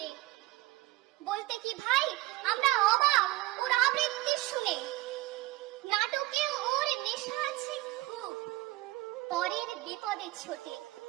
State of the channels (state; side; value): quieter; left; 18.8 dB